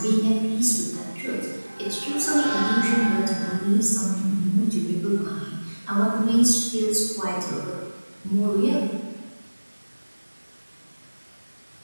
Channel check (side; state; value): both; inverted; correlation -1.00